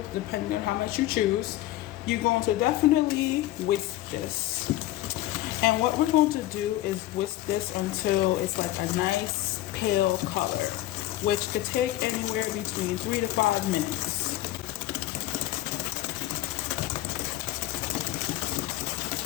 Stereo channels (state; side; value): quieter; right; 15.5 dB